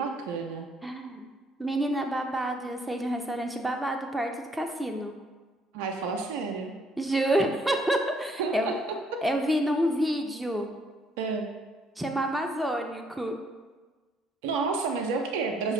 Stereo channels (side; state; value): both; normal; correlation 0.66